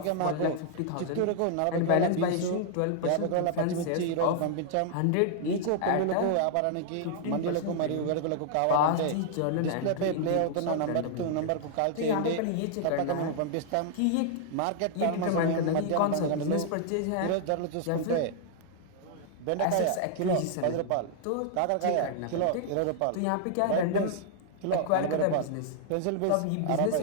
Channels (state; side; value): different; both; correlation -0.01